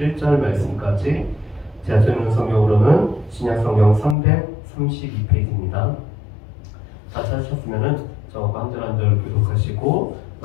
말씀까지 제가 읽는 성경으로는 신약성경 332페이지입니다. 다 찾으셨으면 저거 한 절 한 절 교독하시고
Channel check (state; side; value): drops out; right; at 4.2 s